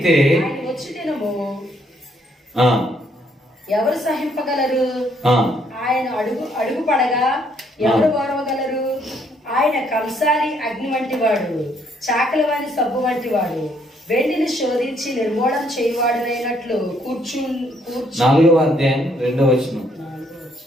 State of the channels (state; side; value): normal; both; correlation 0.69